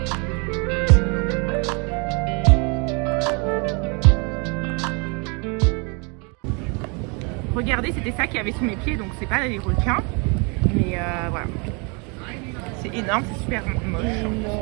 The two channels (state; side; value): quieter; left; 32.4 dB